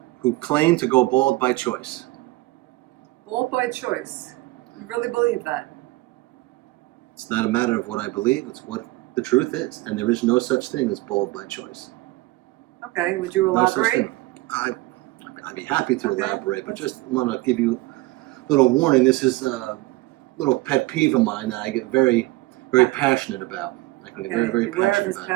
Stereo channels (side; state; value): left; quieter; 20.1 dB